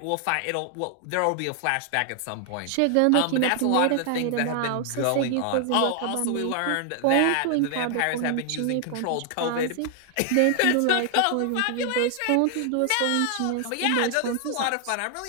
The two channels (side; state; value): both; different; correlation 0.00